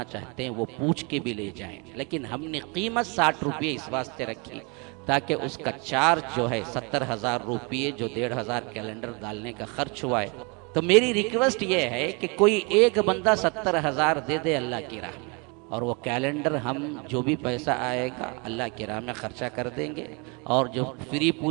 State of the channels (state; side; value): quieter; left; 31.5 dB